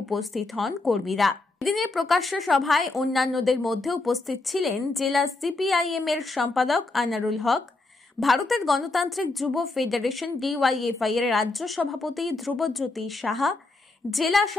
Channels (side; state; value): right; quieter; 3.2 dB